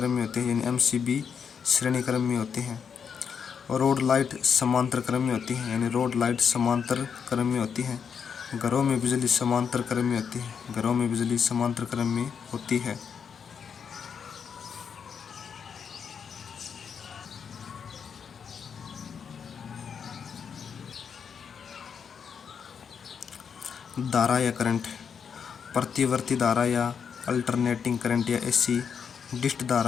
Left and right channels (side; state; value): right; quieter; 6.8 dB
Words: में होते हैं, यानी एमसीबी श्रेणी क्रम में होते हैं। रोड लाइट समांतर क्रम में होती है, यानी रोड लाइट समांतर क्रम में होती है। घरों में बिजली समांतर क्रम में होती है। घरों में बिजली समांतर क्रम में होती है। धारा या करंट, प्रतिवर्ती धारा या अल्टरनेटिंग करंट या एसी, डिस्ट